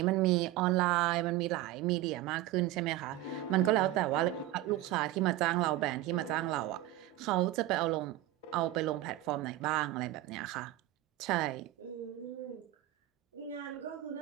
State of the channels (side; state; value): left; quieter; 15.4 dB